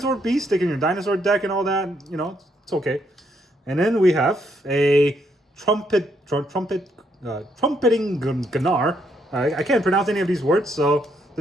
beast. Stick in your dinosaur deck and all that. It's okay. And then we have a trumpeting Gunnar. I can't pronounce any of these words, so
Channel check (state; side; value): normal; both; correlation 0.74